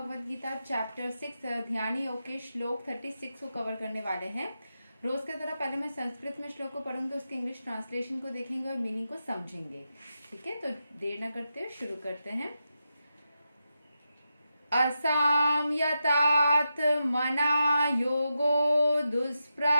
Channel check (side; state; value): both; inverted; correlation -0.88